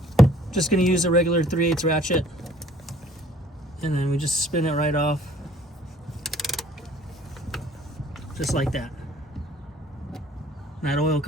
Just going to use a regular 3/8 ratchet. And then we just spin it right off. Just like that. And that oil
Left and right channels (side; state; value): both; normal; correlation 0.56